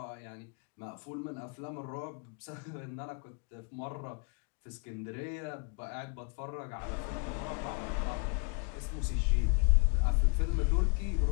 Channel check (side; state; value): right; quieter; 36.5 dB